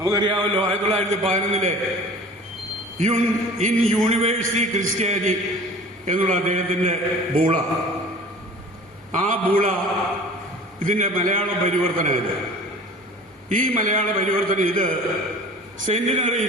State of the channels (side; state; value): both; normal; correlation 0.43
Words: 1911 ഇൻ യൂണിവേഴ്സിറ്റി ക്രിസ്ത്യാനി എന്നുള്ള അദ്ദേഹത്തിന്റെ ബൂള, ആ ബൂള ഇതിന്റെ മലയാള പരിവർത്തനമില്ല. ഈ മലയാള പരിവർത്തനം ഇത്